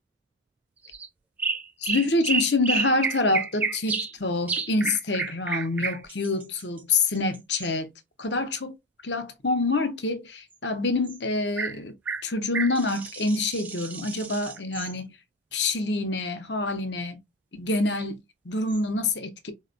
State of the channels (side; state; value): both; normal; correlation 0.18